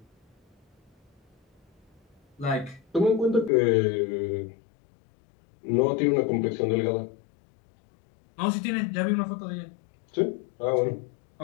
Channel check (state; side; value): drops out; right; at 3.5 s